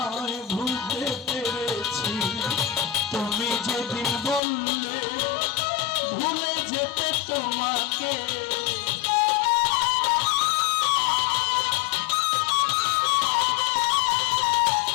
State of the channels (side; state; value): right; drops out; at 4.4 s